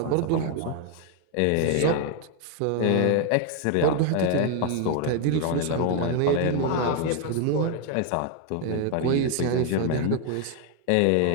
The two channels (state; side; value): different; both; correlation 0.01